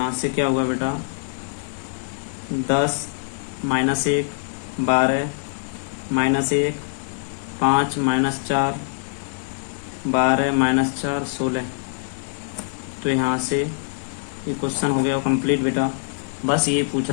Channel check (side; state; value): right; silent; digital silence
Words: से क्या हुआ बेटा 10 - 1 12 -1 5 - 4 12 - 4 16। तो यहाँ से ये क्वेश्चन हो गया कंप्लीट बेटा। बस ये पूछ